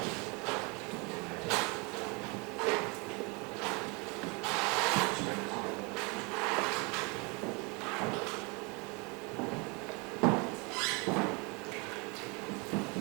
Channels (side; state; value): left; quieter; 30.1 dB